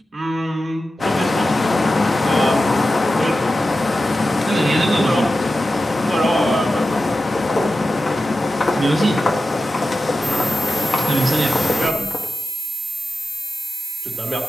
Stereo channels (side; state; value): both; normal; correlation 0.93